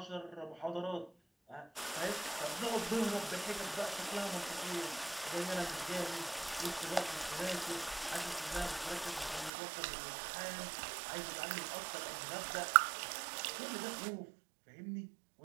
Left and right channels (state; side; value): drops out; left; at 9.5 s